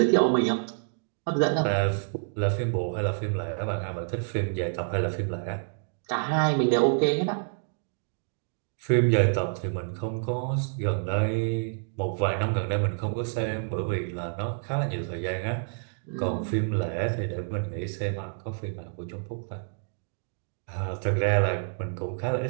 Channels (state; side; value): silent; left; digital silence